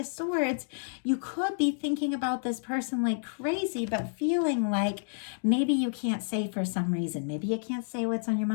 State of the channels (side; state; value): right; silent; digital silence